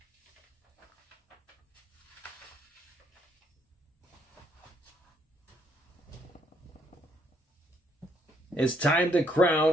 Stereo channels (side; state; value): both; normal; correlation 0.70